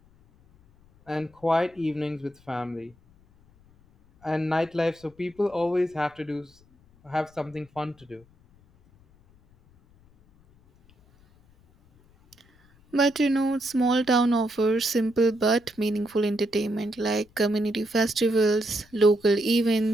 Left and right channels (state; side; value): noise; left; rumble, 30 dB below the sound